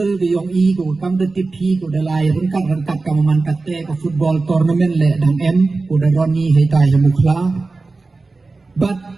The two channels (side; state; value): left; quieter; 3.7 dB